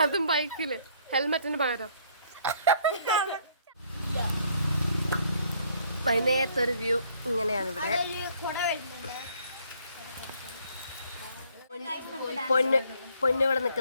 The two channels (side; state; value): both; inverted; correlation -0.63